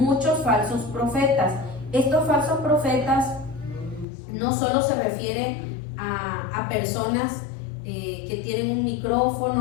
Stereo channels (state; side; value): drops out; right; at 4.0 s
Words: falsos profetas. Estos falsos profetas no solo se refieren a personas que tienen un